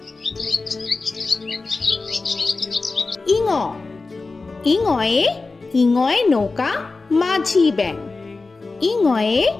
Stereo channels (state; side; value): quieter; right; 3.7 dB